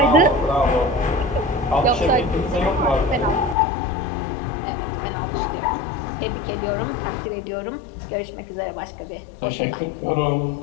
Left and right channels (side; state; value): right; drops out; at 3.6 s